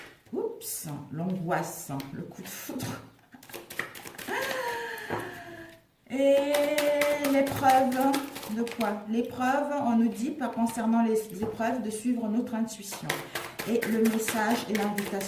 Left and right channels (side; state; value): both; identical; correlation 1.00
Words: Oups, l'angoisse, le coup de foudre. Et l'épreuve de quoi? L'épreuve, on nous dit, concernant les épreuves, de suivre notre intuition. Et le message et